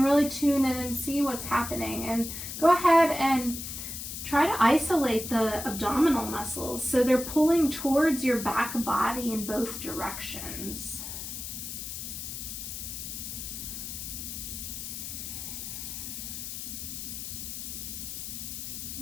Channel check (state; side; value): noise; left; hiss, 7 dB below the sound